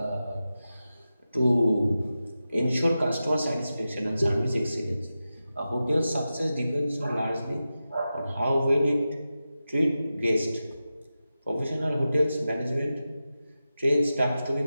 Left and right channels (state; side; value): inverted; both; correlation -0.92